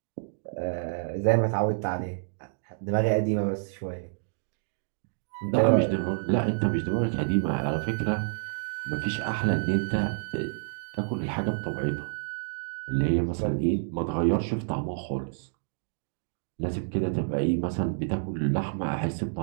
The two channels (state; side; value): silent; left; digital silence